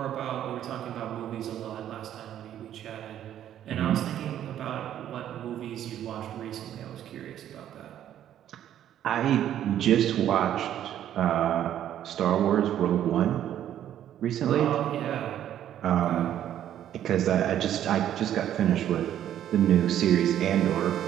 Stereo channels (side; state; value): left; quieter; 11.0 dB